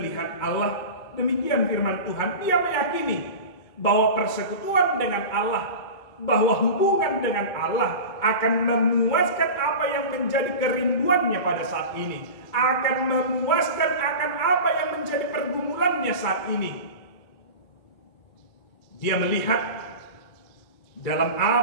Allah? Demikian firman Tuhan. Dia meyakini bahwa persekutuan dengan Allah, bahwa hubungan dengan Allah akan memuaskan apa yang menjadi kerinduannya pada saat ini, akan memuaskan akan apa yang menjadi pergumulannya saat ini. Dia melihat dalam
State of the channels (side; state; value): right; late; 2.3 ms